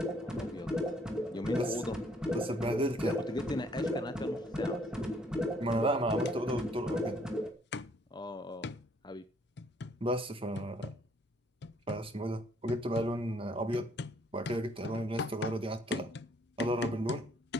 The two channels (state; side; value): normal; both; correlation 0.65